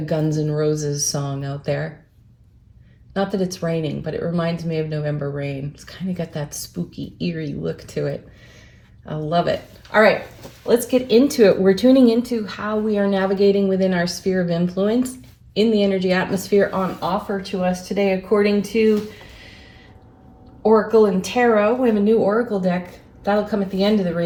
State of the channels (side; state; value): both; identical; correlation 1.00